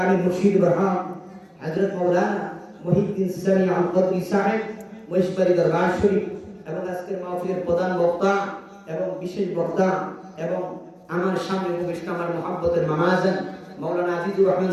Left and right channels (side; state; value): both; identical; correlation 1.00